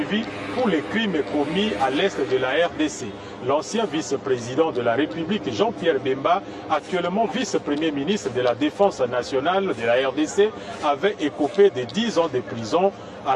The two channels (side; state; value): both; identical; correlation 1.00